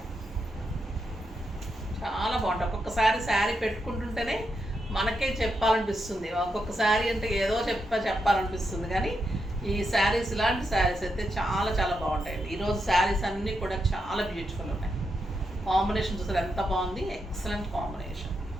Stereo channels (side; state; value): both; normal; correlation 0.84